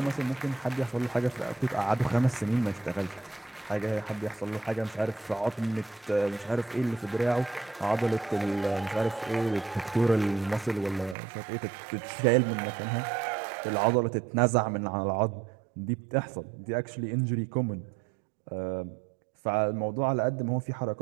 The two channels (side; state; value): left; drops out; at 11.2 s